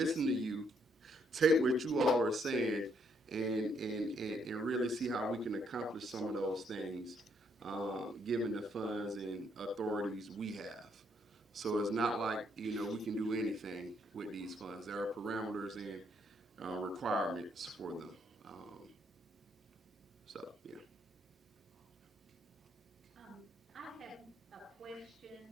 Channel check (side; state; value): both; normal; correlation 0.72